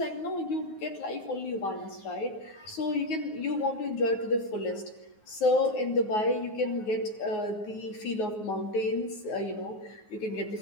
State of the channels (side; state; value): right; late; 9.5 ms